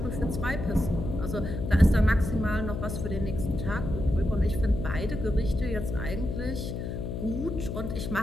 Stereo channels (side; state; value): left; noise; hum, 4 dB below the sound